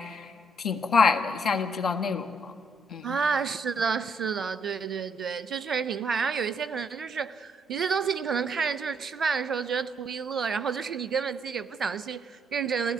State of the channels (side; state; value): both; normal; correlation 0.71